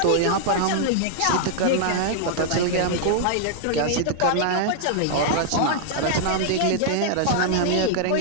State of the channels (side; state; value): both; different; correlation -0.01